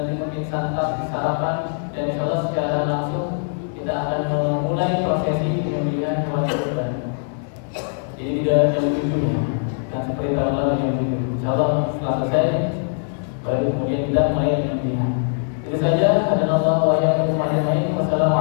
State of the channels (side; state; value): right; silent; digital silence